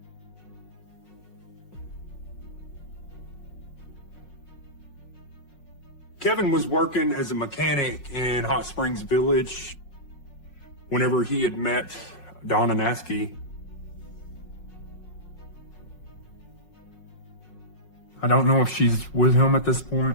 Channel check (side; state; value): right; late; 5.5 ms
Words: Kevin was working as a mechanic in Hot Springs Village whenever he had met Donna Nasky. I don't know if she's with him at this